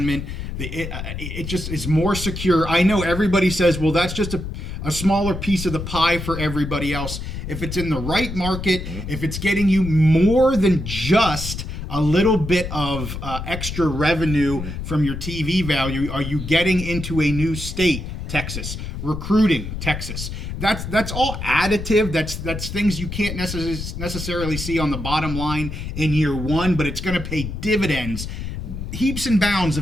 it just is more secure. I know everybody says, well, that's just a smaller piece of the pie for everybody else. If it's in the right market, if it's getting you more than just a little bit of extra revenue from your TV value, are you getting into a new state, Texas, recruiting, Texas? That's all additive. That's things you can't necessarily see on the bottom line in year one, but it's going to pay dividends, heaps and bounds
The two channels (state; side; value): noise; left; rumble, 6 dB below the sound